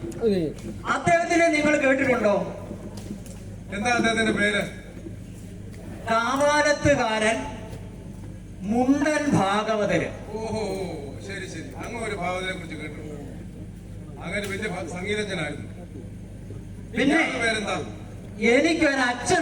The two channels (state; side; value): identical; both; correlation 1.00